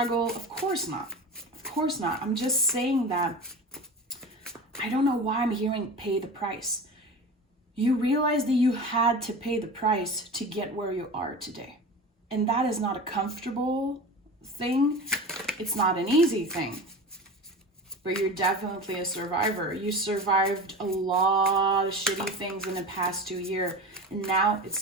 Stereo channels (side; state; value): both; normal; correlation 0.31